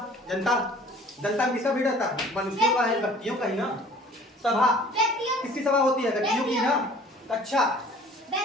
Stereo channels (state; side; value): normal; both; correlation 0.50